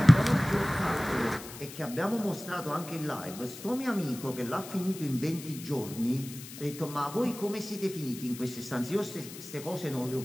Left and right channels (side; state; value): left; noise; hiss, 14 dB below the sound